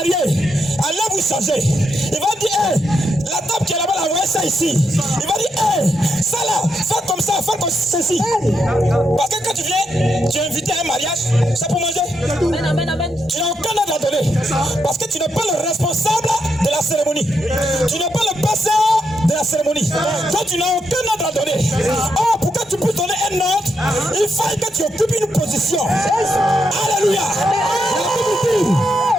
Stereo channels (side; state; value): both; normal; correlation 0.82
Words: allez vous changer. Il va dire, hey, la table qui est là-bas, la voyez ça ici. Il va dire, hey, ça là, fais comme ça, fais comme ceci. Parce que quand tu viens, tu es invité à un mariage, c'est pour manger. Tu n'as aucun ordre à donner. Parce que tu n'es pas le responsable de la cérémonie. Tu n'es pas le pasteur de la cérémonie. Donc tu n'as aucun ordre à donner. Oh, pour que tu puisses donner un ordre, il faut que tu occupes une position. Alléluia.